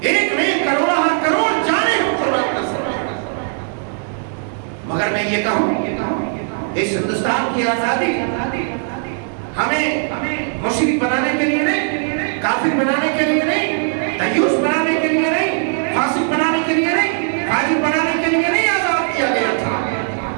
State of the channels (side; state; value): left; silent; 57 dB below the other